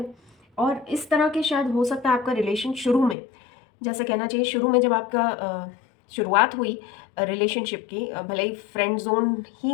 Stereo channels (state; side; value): drops out; right; at 3.2 s